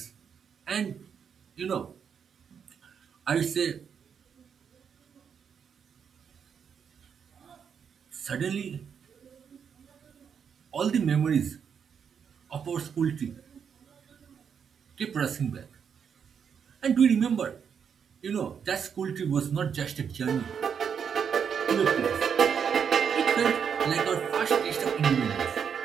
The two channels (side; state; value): left; quieter; 7.2 dB